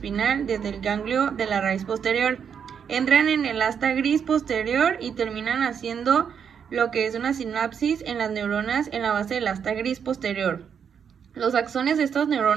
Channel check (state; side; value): quieter; left; 7.4 dB